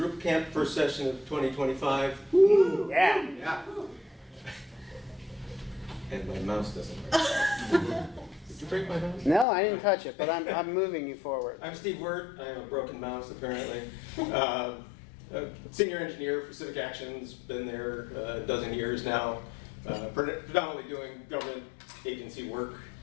Drupal Camp, first session of 2025. Woo! Yeah. Yeah. And my mouse doesn't work. Did you break my mouse? No, I didn't touch it, but I'm moving you forward. I'm Steve Wirt. I have a broken mouse, apparently. A senior engineer for CivicActions, been there a dozen years now, predominantly doing government agency work,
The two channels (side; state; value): right; drops out; at 9.5 s